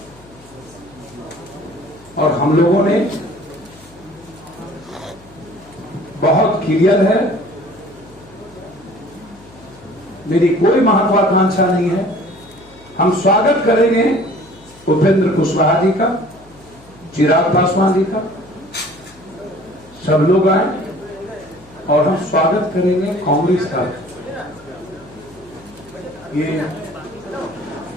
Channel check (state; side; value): noise; left; hum, 25 dB below the sound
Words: और हम लोगों ने बहुत क्लियर है, मेरी कोई महत्वाकांक्षा नहीं है। हम स्वागत करेंगे उपेंद्र कुशवाहा जी का, चिराग पासवान जी का, सब लोग आए, और हम स्वागत करेंगे कांग्रेस का। ये